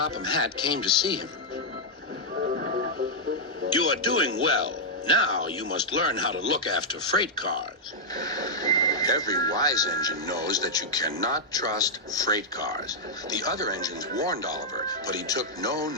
Hatt came to see him. You are doing well. Now you must learn how to look after freight cars. Every wise engine knows that you cannot trust freight cars. The other engines warned Oliver, but he took no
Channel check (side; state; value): both; normal; correlation -0.05